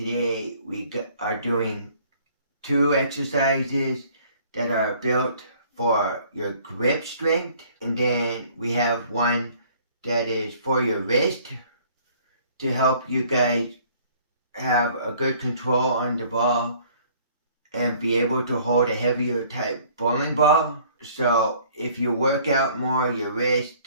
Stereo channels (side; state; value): both; inverted; correlation -0.57